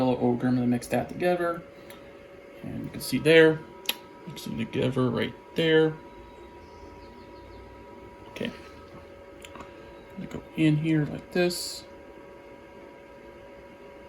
ochre. I'm going to mix that together. And you can see there, mixing together right there. Okay. I'm going to go in here like this.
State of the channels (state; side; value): identical; both; correlation 1.00